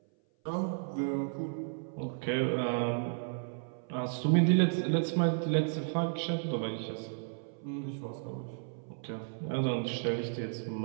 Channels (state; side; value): silent; left; 56 dB below the other